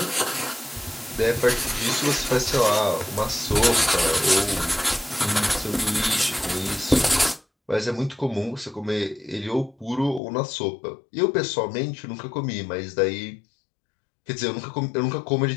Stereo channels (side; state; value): right; drops out; at 10.2 s